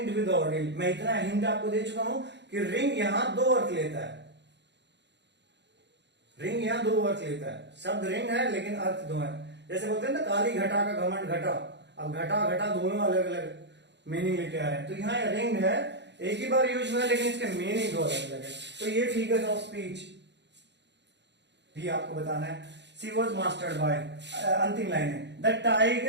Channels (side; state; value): left; late; 0.51 ms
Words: विद ऑर्डिल, मैं इतना हिंट आपको दे चुका हूं कि रिंग यहां दो अर्थ लेता है, रिंग यहां दो अर्थ लेता है, शब्द रिंग है लेकिन अर्थ दो है। जैसे बोलते हैं ना काली घटा का घमंड घटा, अब घटा घटा दोनों अलग अलग मीनिंग लेके आ रहे हैं, तो यहाँ रिंग है, एक ही बार यूज हुआ है लेकिन इसके मीनिंग दो अलग अलग है। तो ये फिगर्स ऑफ स्पीच भी आपको बताना है। शी वॉज मास्टर्ड बाय, अंतिम लाइन है, the